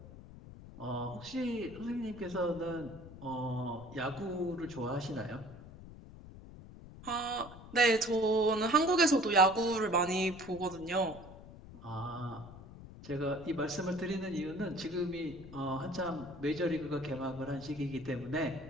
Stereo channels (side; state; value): left; noise; rumble, 16 dB below the sound